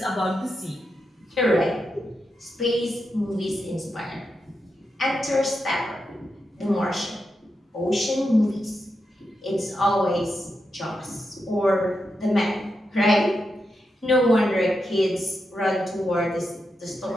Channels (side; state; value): both; normal; correlation 0.86